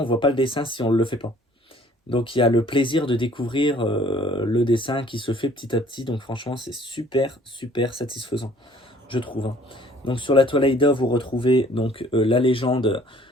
voit pas le dessin si on le fait pas. Donc il y a le plaisir de découvrir le dessin qui se fait petit à petit, donc franchement c'est super super satisfaisant, je trouve. Hein. Donc sur la toile Aïda, vous retrouvez donc la légende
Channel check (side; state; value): both; normal; correlation 0.56